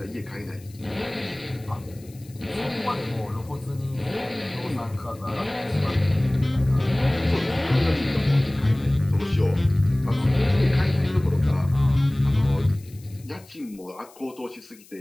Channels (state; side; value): noise; left; hiss, 25 dB below the sound